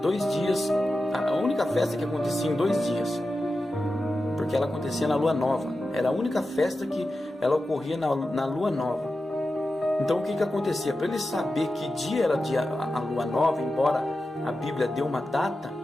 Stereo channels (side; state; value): both; normal; correlation 0.92